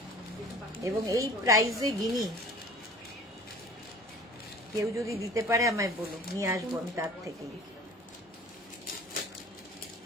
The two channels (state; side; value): normal; both; correlation 0.44